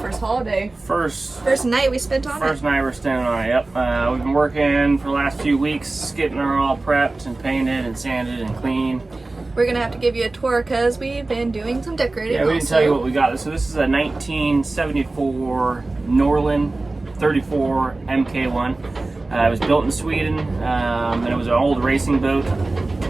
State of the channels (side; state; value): left; quieter; 3.2 dB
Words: holiday. First night we spent on it. First night we're staying on it, yep. We've been working for the last few weeks, getting her all prepped and painted and sanded and clean. We're gonna have to give you a tour because we've been doing some decorating. Yeah, we didn't tell you what we got. So this is a 1974 Norlin 34 MK1. It was built in Sweden, and it was an old racing boat